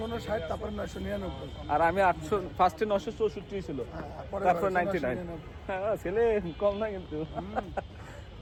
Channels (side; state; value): both; identical; correlation 1.00